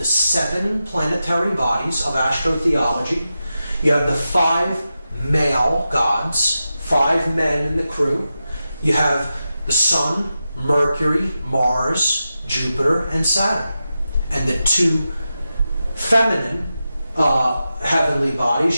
7 planetary bodies of astrotheology. You have the 5 male gods, 5 men in the crew. You have the Sun, Mercury, Mars, Jupiter, and Saturn. And the 2 feminine heavenly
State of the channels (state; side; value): inverted; both; correlation -0.91